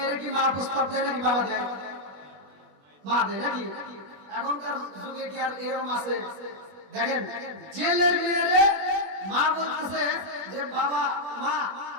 কি মা প্রস্তাব দেয় নাকি বাবা দেয় মা দেয় নাকি এখনকার যুগে কি আর এরকম আছে দেখেন জেলের মেয়েরে মা বলতেছে যে বাবা মা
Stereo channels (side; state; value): left; late; 21 ms